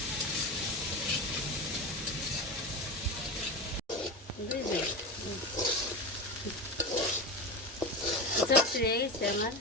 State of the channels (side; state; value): both; normal; correlation 0.22